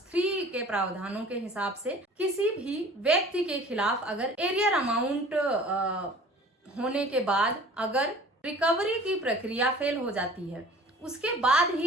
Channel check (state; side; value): normal; both; correlation 0.45